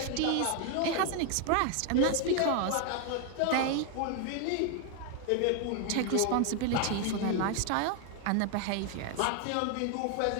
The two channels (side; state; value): both; different; correlation 0.01